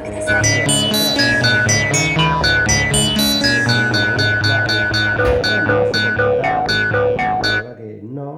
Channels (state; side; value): identical; both; correlation 1.00